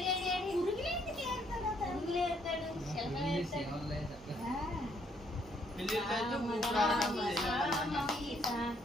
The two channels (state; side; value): normal; both; correlation 0.70